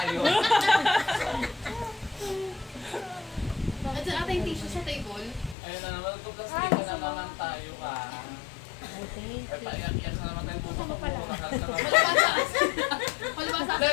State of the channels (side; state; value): right; drops out; at 5.6 s